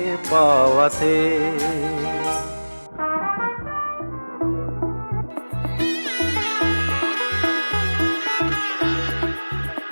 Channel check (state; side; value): inverted; both; correlation -1.00